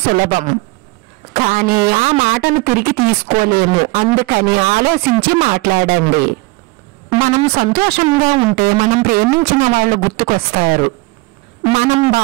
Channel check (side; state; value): left; quieter; 24.2 dB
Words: సులభం, కానీ ఆ మాటను తిరిగి తీసుకోలేము. అందుకని ఆలోచించి మాట్లాడండి. మనం సంతోషంగా ఉంటే మనం ప్రేమించిన వాళ్ళు గుర్తుకొస్తారు. మనం